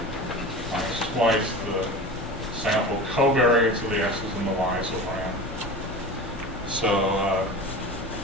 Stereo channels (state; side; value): normal; both; correlation 0.33